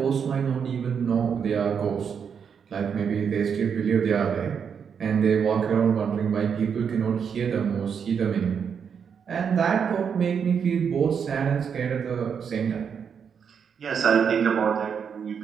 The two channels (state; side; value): quieter; left; 7.0 dB